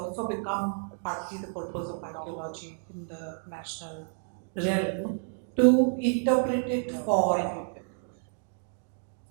become partly the purpose of archaeology in the national realm to interpret it for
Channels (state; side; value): silent; left; 58 dB below the other